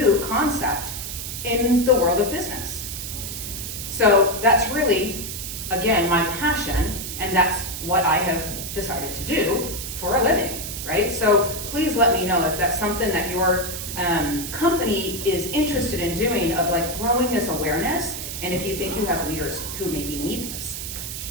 concept in the world of business. So that's really again, my passion, and that's what I have decided to do for a living, right? So please let me know if that's something that your company is interested in doing, of like growing this awareness, and if you think you have leaders who maybe need this.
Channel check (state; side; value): noise; right; hiss, 7 dB below the sound